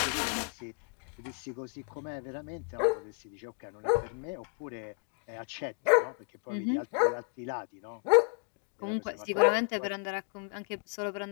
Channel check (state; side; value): quieter; right; 35.6 dB